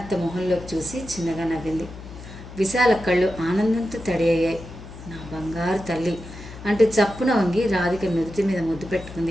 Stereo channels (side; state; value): left; noise; hum, 14 dB below the sound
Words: మొహంలోకి చూసి చిన్నగా నవ్వింది. విశాల కళ్ళు ఆనందంతో తడి అయ్యాయి. నా బంగారు తల్లి అంటూ చప్పున వంగి రాధిక నుదుటి మీద ముద్దు